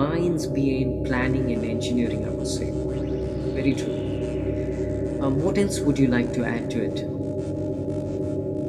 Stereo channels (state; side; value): identical; both; correlation 1.00